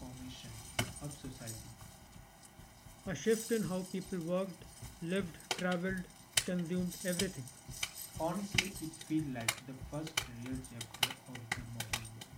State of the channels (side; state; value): both; identical; correlation 1.00